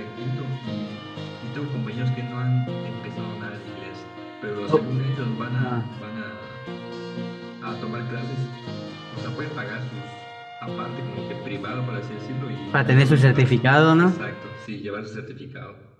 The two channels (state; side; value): identical; both; correlation 1.00